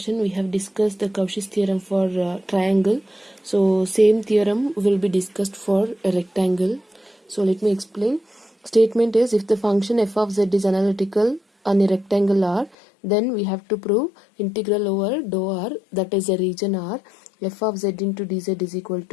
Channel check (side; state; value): right; drops out; at 12.8 s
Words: we have discussed the Cauchy's theorem for triangle. So same theorem will be discussed for a rectangle. So let me explain. Statement is if the function f of z is analytical on a rectangle R, then we have to prove integral over dou R, that is a region R, f of z into dz is equal